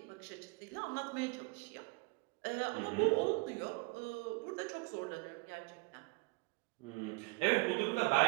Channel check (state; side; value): quieter; left; 26.7 dB